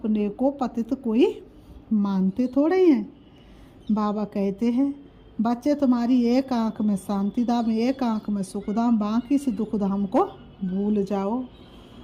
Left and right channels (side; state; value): both; identical; correlation 1.00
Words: को पतित कोई मानते थोड़े ही हैं। बाबा कहते हैं बच्चे तुम्हारी एक आंख में शांति धाम, एक आंख में सुख धाम, बाकी से दुख धाम को भूल जाओ।